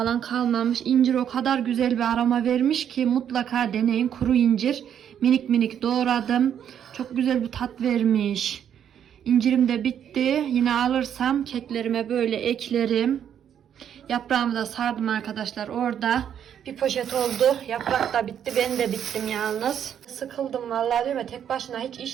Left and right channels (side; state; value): left; quieter; 9.1 dB